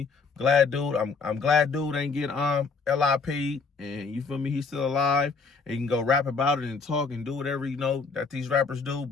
I'm glad dude ain't get LIP'd, and you feel me, he's still alive, and you can go rap about it and talk and do whatever you know that these rappers do.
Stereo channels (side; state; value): right; quieter; 4.7 dB